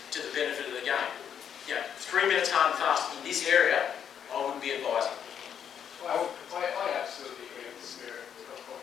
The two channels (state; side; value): quieter; right; 8.4 dB